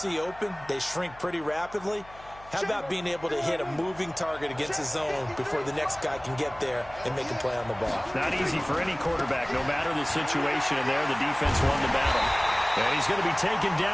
open, they shrink pretty rapidly. How about being able to hit a moving target against a zone before the next guy can get there and make a play on the ball? Not easy for any quarterback, no matter the situation. And there, the defense won the battle. And he's going to be taken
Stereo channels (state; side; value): noise; left; hum, 21 dB below the sound